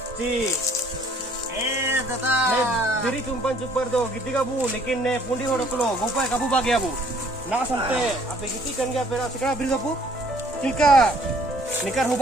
जी दादा तेरी चुंपन चुपर दो गिद्दी का बू लेकिन ने पुंडी होड़ को गोपा काबू बा गया बू ना संते आपे गिद्दी कन गया पेरा सिकड़ा बिर दबू तिलका निकर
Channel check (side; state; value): both; normal; correlation 0.59